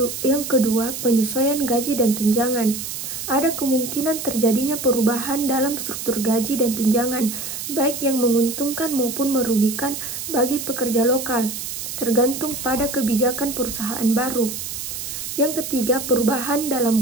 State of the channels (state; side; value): noise; right; hiss, 6 dB below the sound